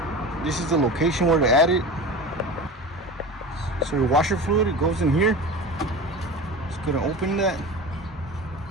this is the location where to add it. So your washer fluid, it goes in here. Just gonna open that.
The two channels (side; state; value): both; normal; correlation 0.32